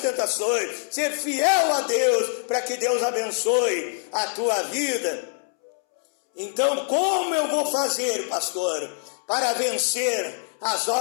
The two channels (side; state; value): right; silent; 62 dB below the other